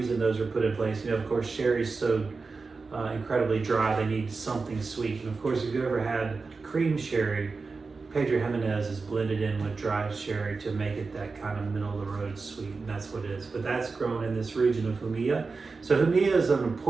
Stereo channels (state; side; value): quieter; left; 4.3 dB